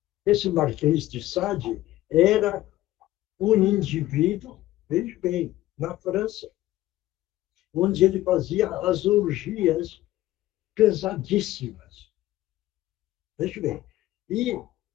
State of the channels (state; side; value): quieter; right; 15.6 dB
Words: Esse Marquês de Sade era um indivíduo, veja bem, na França, onde ele fazia as orgias pesadíssimas. Veja bem. E